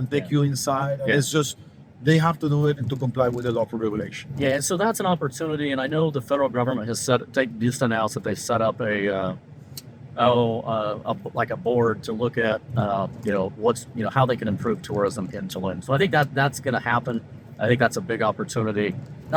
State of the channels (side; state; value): both; identical; correlation 1.00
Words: take you inside. And Yeah. it's just they have to do it to comply with the local regulation. Yeah, and so that's an opportunity, and I know the federal government has just announced that they've set up like a board to look at how they can improve tourism in Tulum. So I think that's going to happen. I think that's a big opportunity,